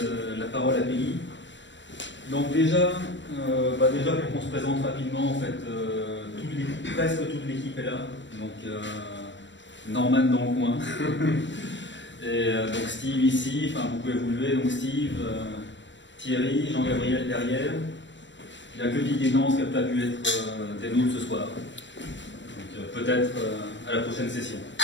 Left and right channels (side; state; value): right; late; 0.53 ms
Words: la parole à Peggy. Donc déjà pour qu'on se présente rapidement, en fait, presque toute l'équipe est là. Donc Norman dans le coin. Et donc Steve ici, enfin vous pouvez vous lever, donc Steve, Thierry, Jean-Gabriel derrière. Il n'y a que Didier Nance qui n'a pas pu être des nôtres ce soir. Peut-être à la prochaine session.